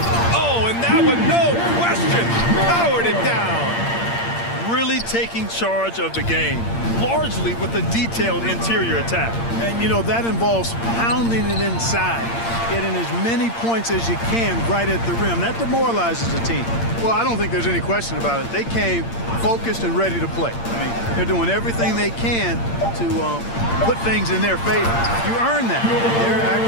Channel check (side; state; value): right; late; 8.7 ms